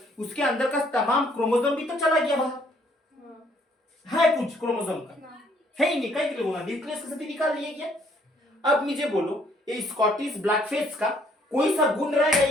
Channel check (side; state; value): both; normal; correlation 0.65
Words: उसके अंदर का तमाम क्रोमोसोम भी तो चला गया बाहर, है कुछ क्रोमोसोम का है ही नहीं, कहीं के लिए न्यूक्लियस के साथ निकाल लिया गया। अब मुझे बोलो ये स्कॉटिश ब्लैकफिश का कोई सा गुण रहेगा